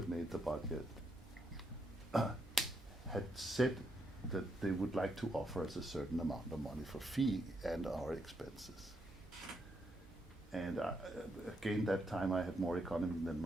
made the budget had said that they would like to offer us a certain amount of money for fee and our expenses. And again, that time I had more economy than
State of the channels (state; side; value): normal; both; correlation 0.79